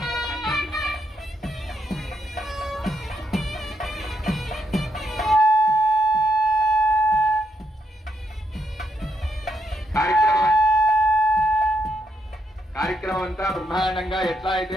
కార్యక్రమం అంతా బ్రహ్మాండంగా ఎట్లా అయితే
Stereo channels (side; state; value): both; normal; correlation 0.77